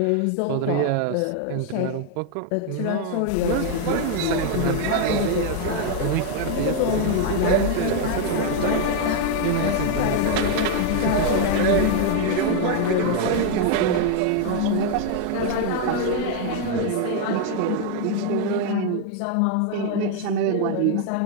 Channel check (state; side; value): different; both; correlation 0.01